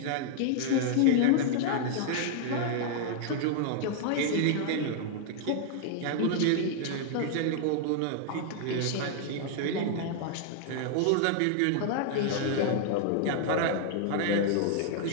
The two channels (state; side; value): different; both; correlation -0.01